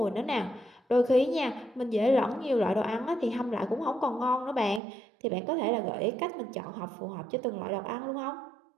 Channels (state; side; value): drops out; left; at 4.8 s